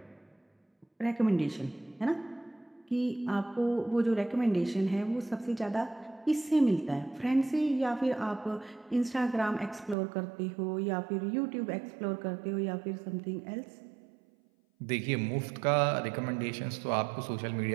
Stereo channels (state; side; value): drops out; left; at 10.0 s